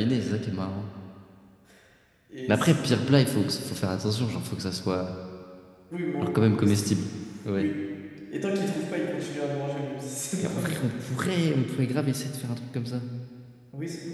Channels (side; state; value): both; identical; correlation 1.00